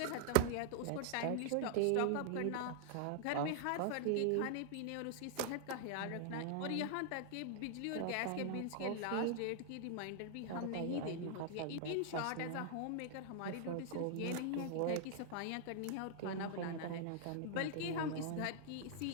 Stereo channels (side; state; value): both; different; correlation 0.00